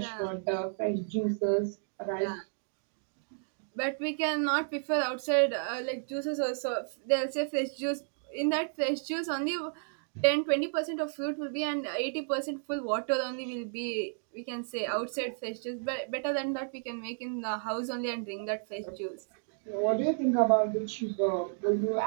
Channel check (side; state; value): left; silent; digital silence